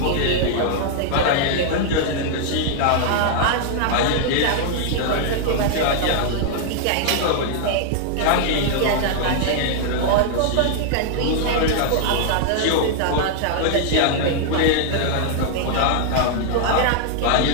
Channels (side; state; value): both; different; correlation 0.00